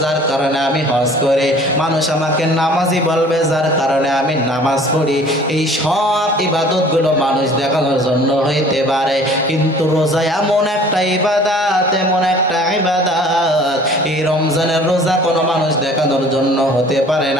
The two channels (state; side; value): normal; both; correlation 0.50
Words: যার কারণে আমি হজ করি। মানুষ আমাকে নামাজি বলবে, যার কারণে আমি নামাজ পড়ি। এই সব ইবাদতগুলো মানুষ দেখানোর জন্য হইতে পারে, কিন্তু রোজা এমন একটা ইবাদত, এমন একটা ইবাদত, এই রমজানের রোজা কোনো মানুষ দেখানোর জন্য হতে পারে